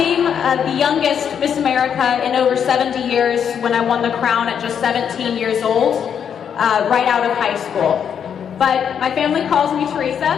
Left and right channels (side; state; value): right; quieter; 8.0 dB